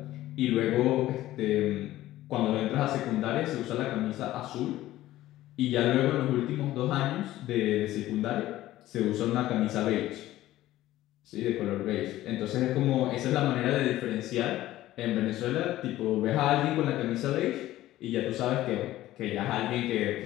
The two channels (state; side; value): quieter; right; 15.1 dB